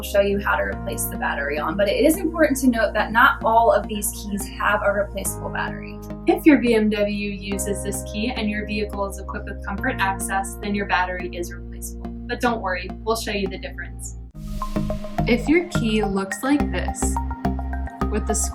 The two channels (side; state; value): both; identical; correlation 1.00